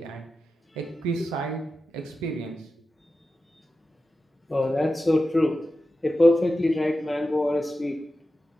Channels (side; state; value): both; normal; correlation 0.92